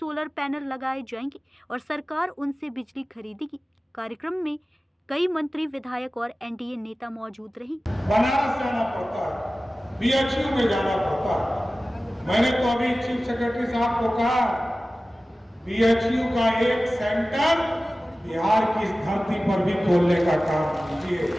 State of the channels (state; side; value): normal; both; correlation 0.96